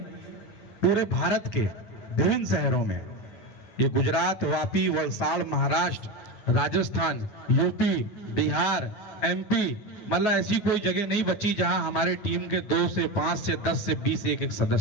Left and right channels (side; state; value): right; late; 9.4 ms